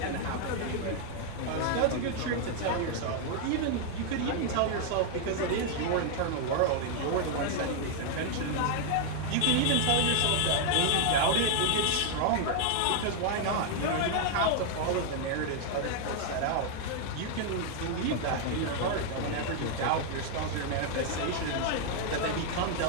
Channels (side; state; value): both; different; correlation 0.00